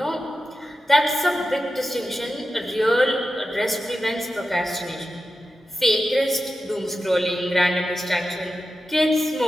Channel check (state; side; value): normal; both; correlation 0.92